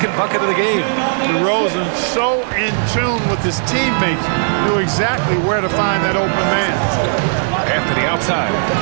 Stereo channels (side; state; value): left; silent; 65 dB below the other